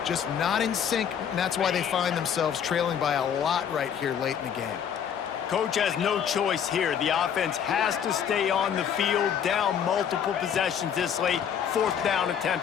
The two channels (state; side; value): quieter; right; 8.3 dB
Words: just not in sync, and that's why they find themselves trailing by a lot right here late in the game. Coach has no choice here. The offense has to stay on the field, down multiple possessions this late. 4th down